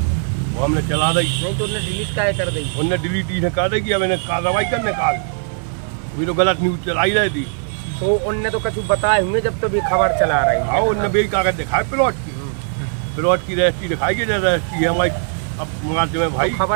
वो हमने चला दी। नहीं तो उन्हें डिलीट का कर दी? उन्होंने डिलीट इन्हें कर दी कि अब इन्हें कार्रवाई करने काल, अभी तो गलत न्यूज चलाई रही थी। तो उनने तो कुछ बताए हुए जब तो भी खबर चला रही है? हाँ, उनने भी कागज दिखाए प्लॉट की रजिस्ट्री दिखाई गई, रजिस्ट्री है हमारी। अब मुआवजे में भाई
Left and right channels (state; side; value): silent; left; 66 dB below the other